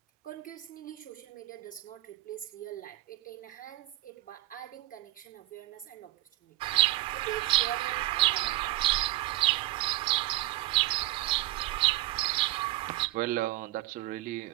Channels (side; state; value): left; quieter; 17.7 dB